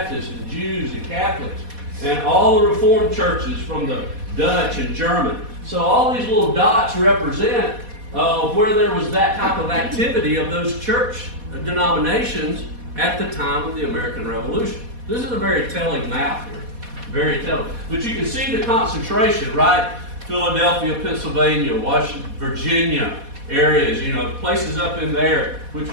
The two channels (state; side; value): late; left; 4.1 ms